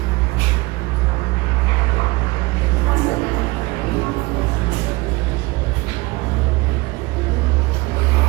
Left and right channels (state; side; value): quieter; left; 23.0 dB